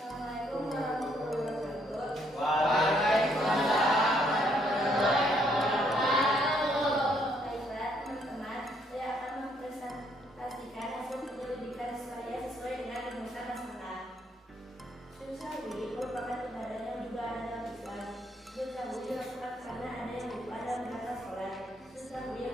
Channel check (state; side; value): normal; both; correlation 0.70